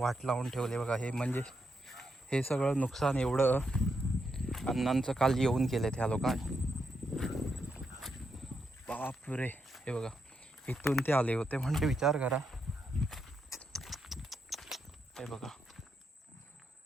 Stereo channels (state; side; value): normal; both; correlation 0.82